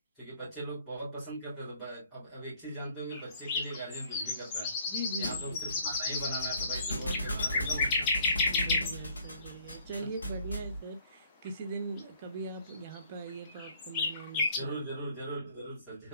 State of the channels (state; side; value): inverted; both; correlation -0.59